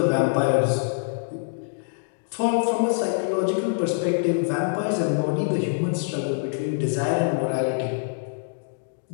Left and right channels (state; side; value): silent; right; digital silence